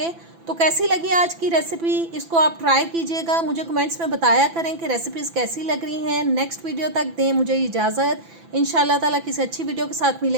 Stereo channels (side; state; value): left; late; 6.0 ms